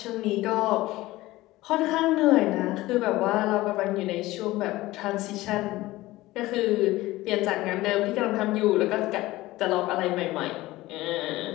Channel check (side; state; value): right; quieter; 18.1 dB